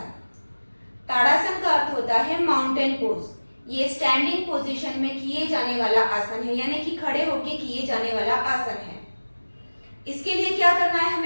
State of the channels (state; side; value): inverted; both; correlation -1.00